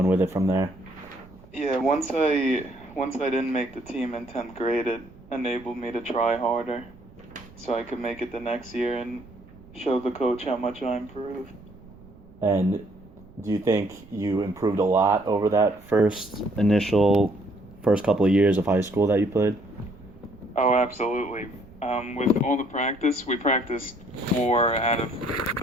with it from there? Yeah, once I didn't make the team in 10th grade, it enabled me to try harder so I could make it the next year and show the coach how much I improved. And do you think you improved a lot over that first couple of years of high school that you played? Oh, absolutely. With all the practice, we practiced 4 out of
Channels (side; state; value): right; noise; rumble, 23 dB below the sound